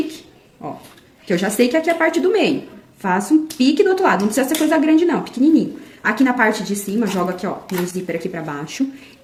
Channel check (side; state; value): both; identical; correlation 1.00